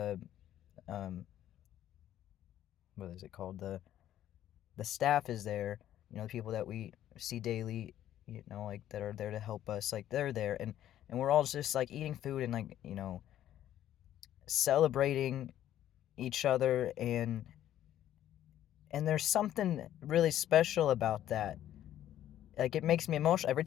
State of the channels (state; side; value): quieter; right; 11.9 dB